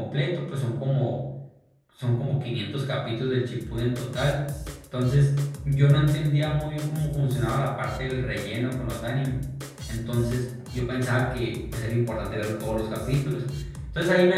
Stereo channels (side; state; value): both; identical; correlation 1.00